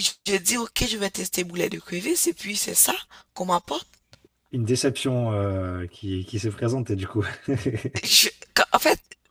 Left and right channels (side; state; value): both; identical; correlation 1.00